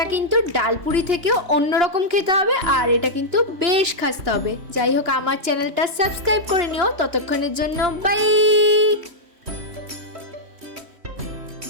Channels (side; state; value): left; late; 3.1 ms